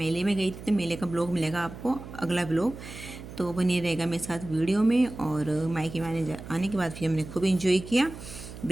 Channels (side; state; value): right; noise; hum, 13 dB below the sound